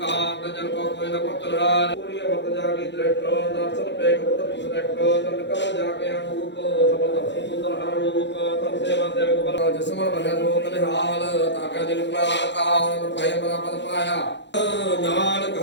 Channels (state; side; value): late; right; 0.52 ms